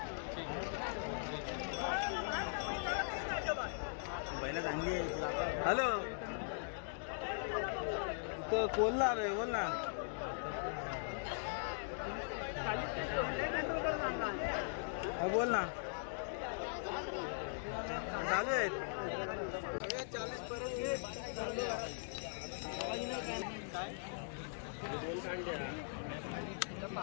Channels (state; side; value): silent; right; digital silence